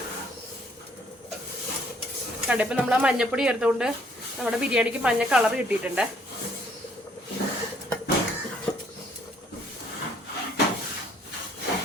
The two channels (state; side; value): normal; both; correlation 0.64